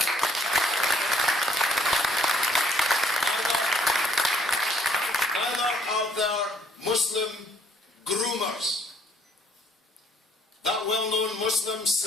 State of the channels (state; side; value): normal; both; correlation 0.63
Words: Neither are there Muslim groomers. That well-known Muslim